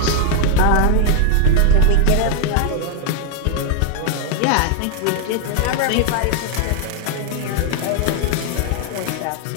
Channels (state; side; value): different; both; correlation 0.00